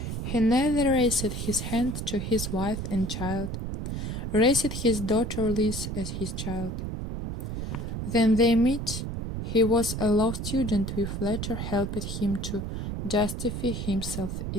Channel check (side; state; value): right; noise; rumble, 4 dB below the sound